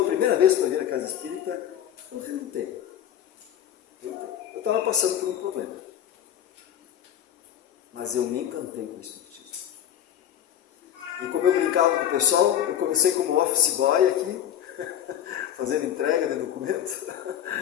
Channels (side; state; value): right; quieter; 10.8 dB